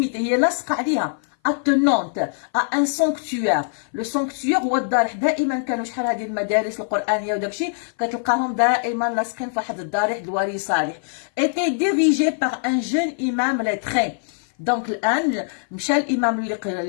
هي لاصقه عليها. attenante à un sanctuaire. le sanctuaire هو الضريح. دائما كانوا شحال هذه المدارس القرآنية وداكشي كتلقاهم دائما لاصقين في واحد الضريح الوالي صالح. était dirigé par un jeune imam lettré. دونك الان مشى الامام اللي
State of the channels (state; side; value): silent; right; 57 dB below the other